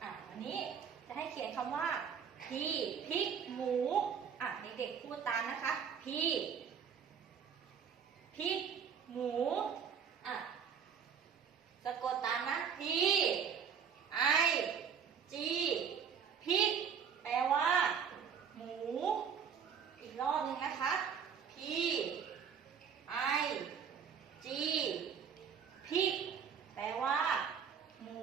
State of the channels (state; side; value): quieter; left; 7.2 dB